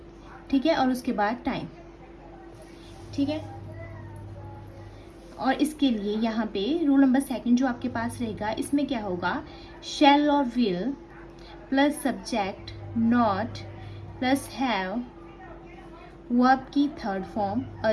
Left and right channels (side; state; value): both; identical; correlation 1.00